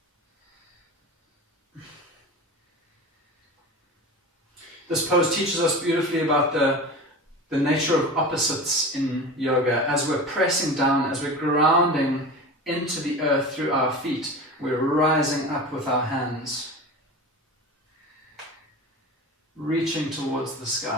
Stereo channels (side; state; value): both; normal; correlation 0.31